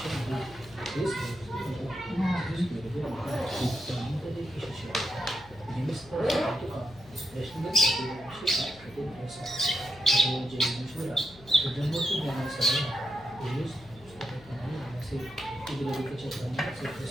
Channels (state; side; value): noise; left; hum, 22 dB below the sound